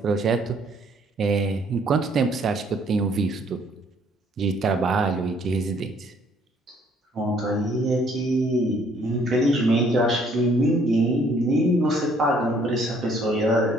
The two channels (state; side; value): normal; both; correlation 0.63